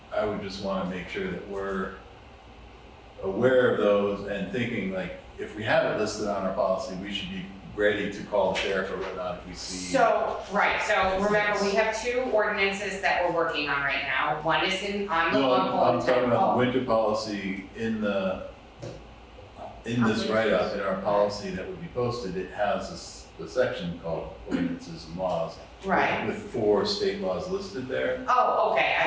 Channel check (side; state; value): both; identical; correlation 1.00